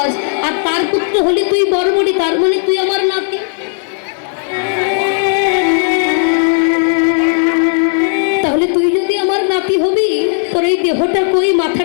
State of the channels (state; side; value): silent; right; digital silence